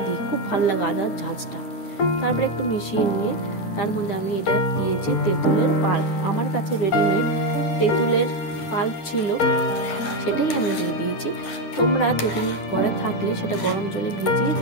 দিই, খুব ভালো লাগে আদার ঝাঁঝটা। তারপরে একটু মিশিয়ে নিয়ে তার মধ্যে আমি এটা দিয়েছি তেঁতুলের পাল্প। আমার কাছে রেডিমেড তেঁতুলের পাল্প ছিল, সেটাই আমি দিয়ে দিয়েছি। তোমরা তেঁতুল ঘরে থাকলে সেটা গরম জলে ভিজিয়ে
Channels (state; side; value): late; right; 9.9 ms